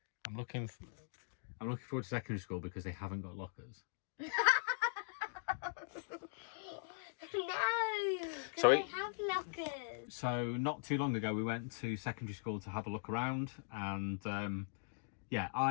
I'm looking forward to secondary school because they haven't got lockers. No, So they have lockers. So not too long ago we went to secondary school to have a look around, and yeah,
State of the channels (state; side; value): silent; right; digital silence